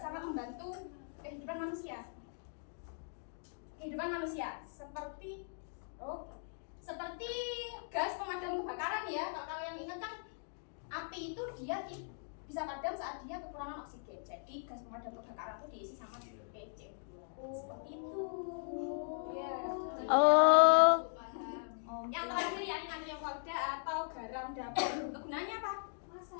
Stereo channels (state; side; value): silent; right; digital silence